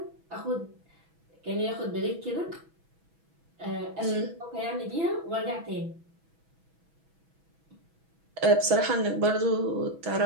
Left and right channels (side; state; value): left; late; 6.1 ms